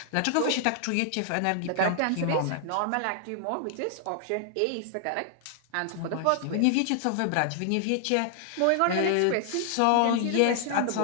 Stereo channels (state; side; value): different; both; correlation 0.00